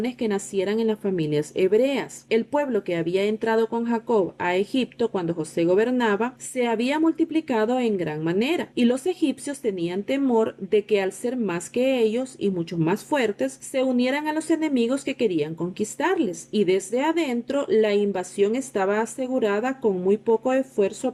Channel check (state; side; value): identical; both; correlation 1.00